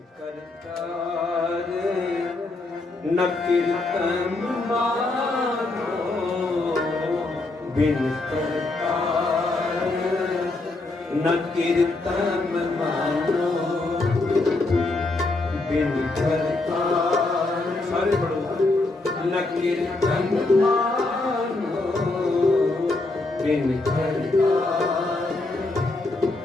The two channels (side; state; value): right; quieter; 3.1 dB